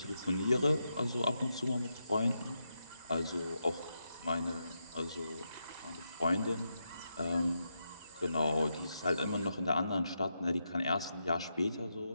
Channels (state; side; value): inverted; both; correlation -0.84